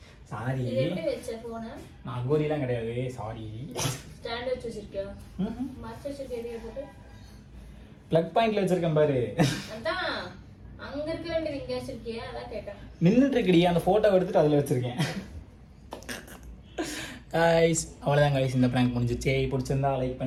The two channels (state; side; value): identical; both; correlation 1.00